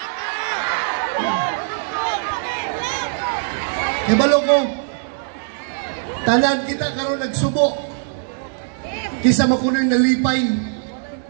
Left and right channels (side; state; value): left; silent; digital silence